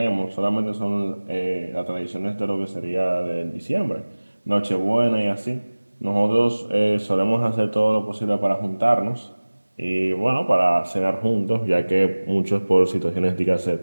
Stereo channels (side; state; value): both; inverted; correlation -1.00